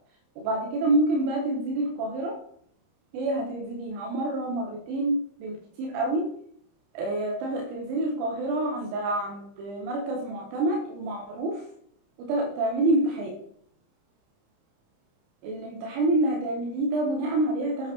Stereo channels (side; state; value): left; late; 30 ms